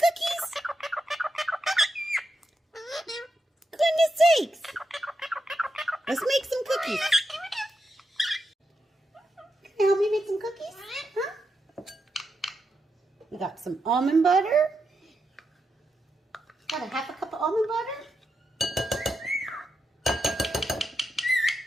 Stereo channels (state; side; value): normal; both; correlation 0.85